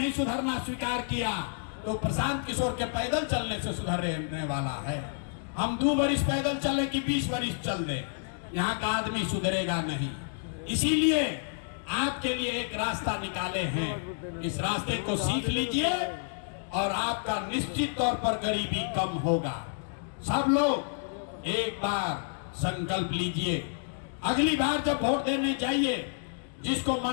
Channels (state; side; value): silent; right; digital silence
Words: सुधरना स्वीकार किया तो प्रशांत किशोर के पैदल चलने से सुधरने वाला है। हम 2 बरिस पैदल चले कि 20 बरिस चल दे, यहाँ का आदमी सुधरेगा नहीं। इसीलिए आपके लिए एक रास्ता निकाले हैं, इस रास्ते को सीख लीजिए और आपका निश्चित तौर पर गरीबी कम होगा। सब लोग एक बार संकल्प लीजिए, अगली बार जब वोट देने जाइए जिसको